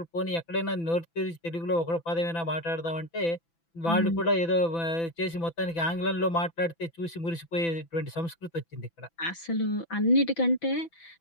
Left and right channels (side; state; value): right; late; 6.0 ms